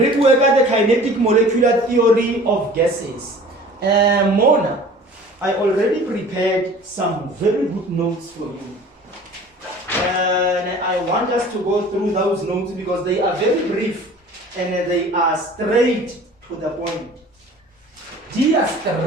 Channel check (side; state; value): both; normal; correlation 0.45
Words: kinetic molecular theory of gases. Mona, I already prepared some very good notes for you. And I want us to go through those notes because they are very brief and they are straight to the point. They are